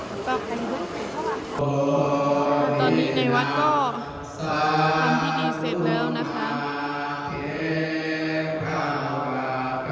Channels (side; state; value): both; identical; correlation 1.00